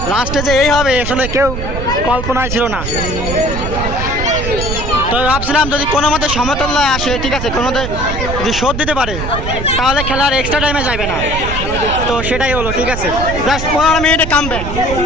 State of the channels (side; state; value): right; noise; rumble, 5 dB below the sound